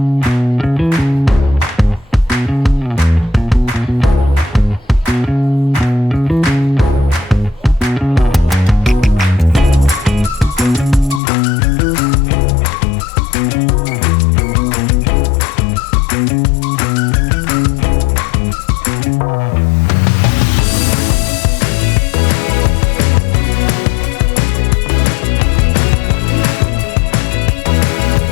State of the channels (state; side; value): drops out; right; at 11.2 s